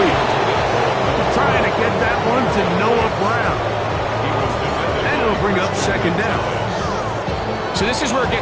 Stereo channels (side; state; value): both; identical; correlation 1.00